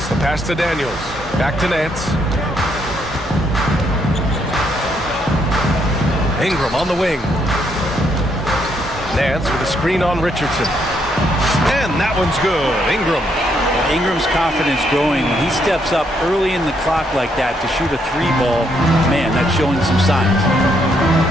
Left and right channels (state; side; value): normal; both; correlation 0.74